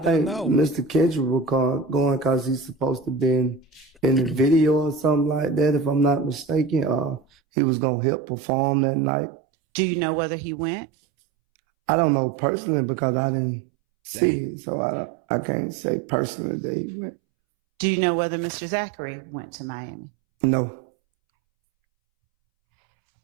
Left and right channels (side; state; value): left; drops out; at 7.2 s